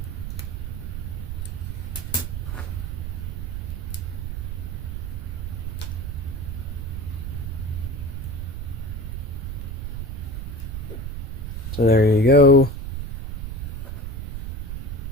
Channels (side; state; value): right; noise; rumble, 5 dB below the sound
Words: So there you go.